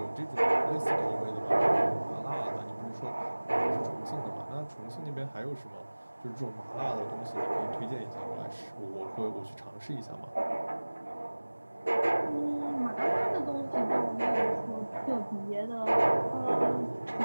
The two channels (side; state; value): both; inverted; correlation -1.00